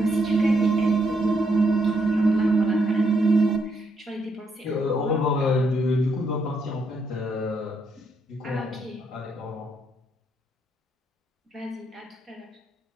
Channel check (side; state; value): both; normal; correlation 0.76